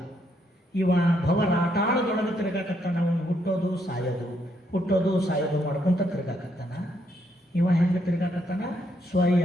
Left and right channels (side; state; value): both; normal; correlation 0.75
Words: ಇವ ಭವರಾಟಾಳದೊಳಗೆ ತಿರ್ಗಾಕತ್ತಾನ, ಅವನು ಹುಟ್ಟೋದು ಸಾಯೋದು ಮಾಡ್ಕೊಂತ ತಿರ್ಗಾಕತ್ತಾನ. ಇವ ಹೆಂಗೆ ತಿರ್ಗಾಕತ್ತಾನ? ಸ್ವಯ